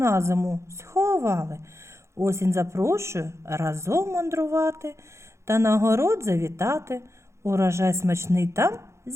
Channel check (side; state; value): left; late; 0.14 ms